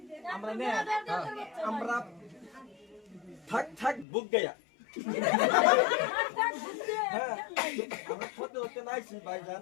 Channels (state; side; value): drops out; right; at 4.0 s